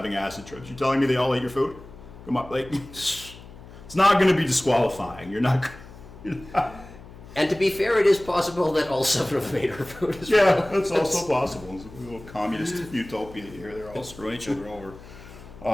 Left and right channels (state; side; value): noise; left; hum, 18 dB below the sound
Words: acid trips. You telling me they all ate your food? Come on, like, it's not gonna be disqualifying. You're not. And to be fair, it is possible that all 7 of them ate her food as well. Yeah, that's also possible. It's a little communist utopia here. They're all screwing each other over.